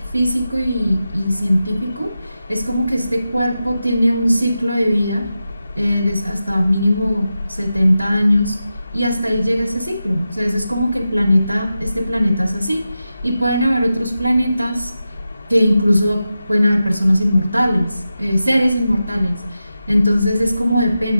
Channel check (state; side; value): inverted; both; correlation -0.91